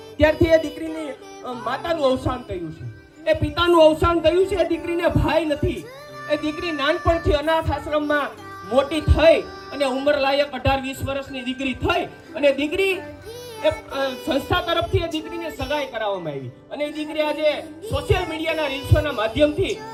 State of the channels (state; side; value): identical; both; correlation 1.00